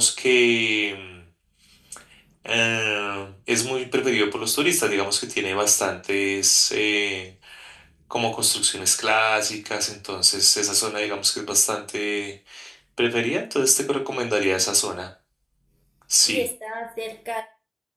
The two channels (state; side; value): identical; both; correlation 1.00